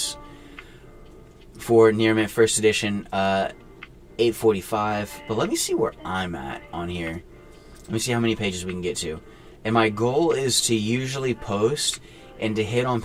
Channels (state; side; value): identical; both; correlation 1.00